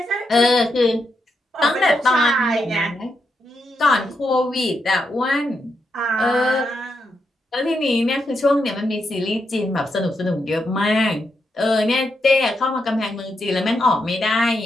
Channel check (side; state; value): both; normal; correlation 0.83